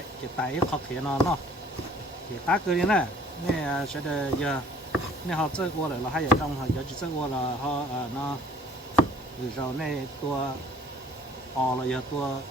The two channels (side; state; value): both; normal; correlation 0.53